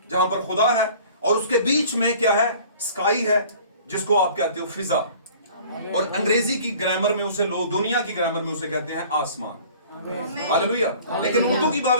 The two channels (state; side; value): inverted; both; correlation -0.48